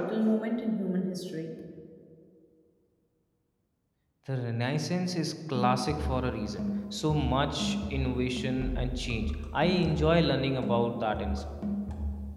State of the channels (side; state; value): both; identical; correlation 1.00